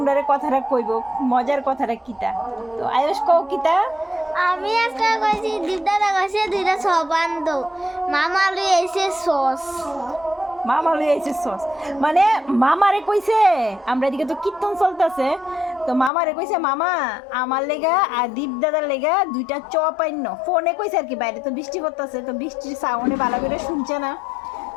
কথাটা কইব, মজার কথাটা কিতা। তো আয়ুষ কও কিতা। আমি আজকে কইছি দিদারা কইছে দুইটা সবান্দ মামা লই এসে সস মামা লই আইছে সস, মানে মামারে কইছে। আমরা এদিকে তো কীর্তন চলতেছে, তো মামারে কইছে মামা আমার লেগা আর দীপ দাদার লেগা দুইটা চপ আইন। ফোনে কইছে আর কি, বাইরে তো বৃষ্টি করতেছে, তো বৃষ্টির সাউন্ডে ভালো করে শুনছে না।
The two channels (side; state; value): right; drops out; at 16.1 s